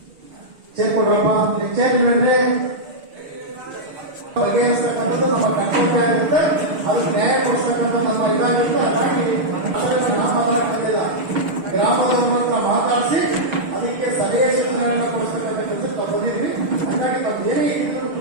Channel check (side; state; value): left; late; 6.7 ms